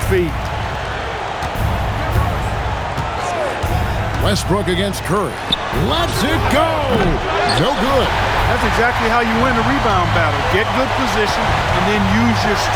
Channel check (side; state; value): both; identical; correlation 1.00